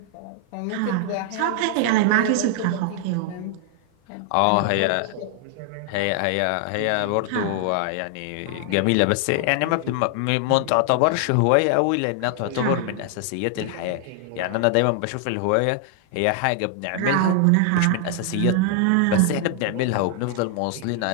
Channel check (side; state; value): both; different; correlation 0.00